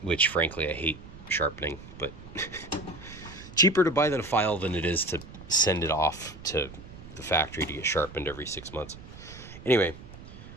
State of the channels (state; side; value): noise; right; rumble, 16 dB below the sound